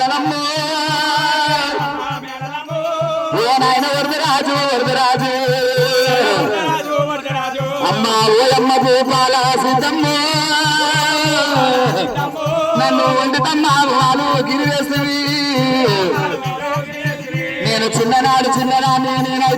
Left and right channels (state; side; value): identical; both; correlation 1.00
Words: ఓ నాయన వరదరాజు వరదరాజు అమ్మ ఓయమ్మ భూపాల సిద్ధమ్మ నన్ను వండుతమ్మ వాళ్ళు గిరివేస్తుంది నేను చిన్ననాడు చిన్ననాన్ని